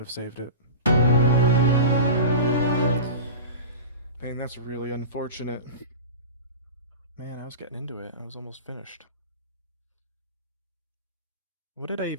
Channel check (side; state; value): both; inverted; correlation -0.31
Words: have saved it. Man, that's really unfortunate. Man, I was getting into it. I was almost finished. What did I